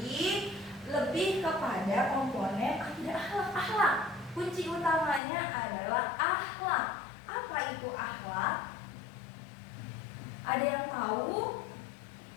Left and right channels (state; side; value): drops out; right; at 5.2 s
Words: lebih kepada komponen akidah akhlak. Kunci utamanya adalah akhlak. Apa itu tahu?